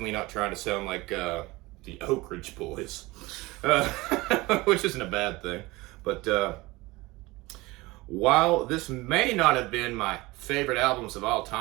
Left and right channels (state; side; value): quieter; left; 21.4 dB